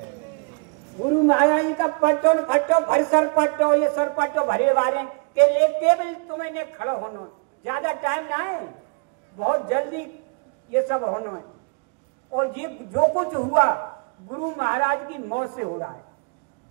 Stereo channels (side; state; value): left; quieter; 36.4 dB